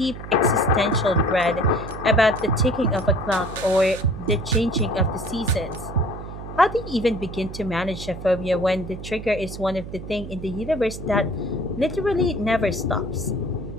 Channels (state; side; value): noise; right; hum, 10 dB below the sound